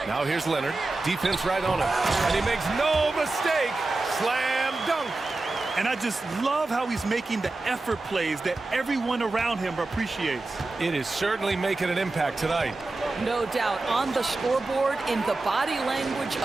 Now here's Leonard. Defense right on him. And he makes no mistake. Slam dunk. And I just love how he's making the effort plays that everyone around him appreciates. It is certainly making an impact tonight. No doubt. On the scoreboard, in the body language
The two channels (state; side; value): quieter; left; 3.2 dB